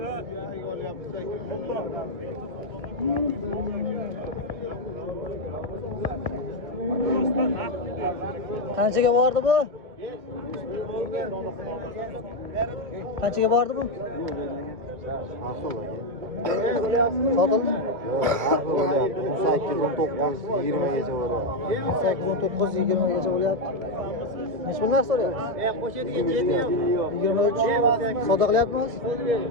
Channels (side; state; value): left; late; 1.8 ms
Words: Qanchaga bordi bu? Qanchaga bordi bu? Sotildimi? 18-19-20 gacha bo'ladi. 18-19-20 gacha bo'lyapti. Necha pul narx so'rayapsiz? 23. Savdo qilyapmiz?